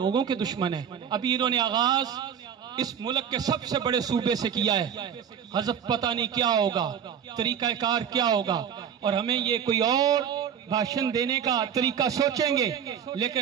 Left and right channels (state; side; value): quieter; left; 8.2 dB